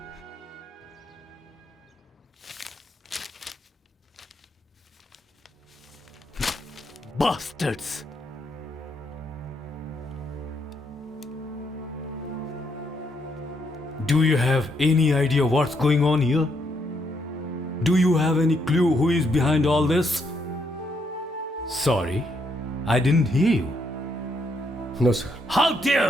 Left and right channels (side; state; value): both; normal; correlation 0.76